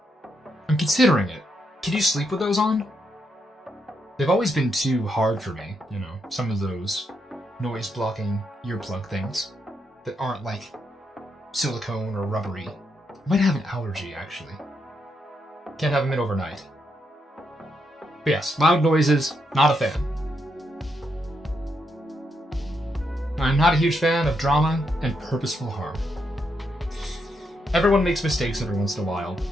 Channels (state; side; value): normal; both; correlation 0.80